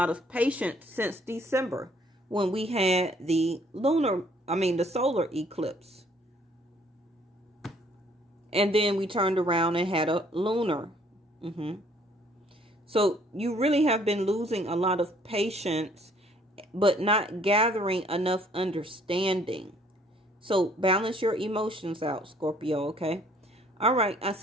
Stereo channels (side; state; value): both; normal; correlation 0.61